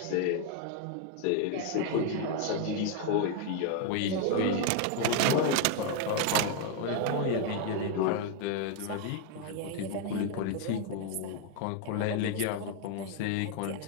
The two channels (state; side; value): different; both; correlation 0.00